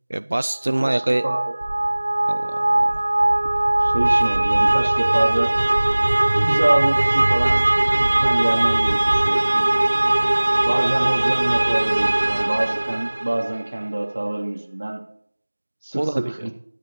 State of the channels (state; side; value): inverted; both; correlation -1.00